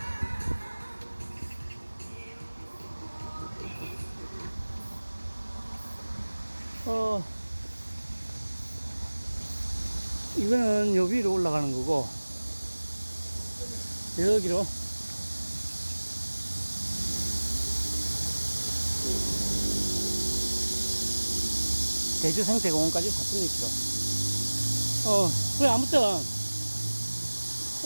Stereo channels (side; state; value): both; inverted; correlation -1.00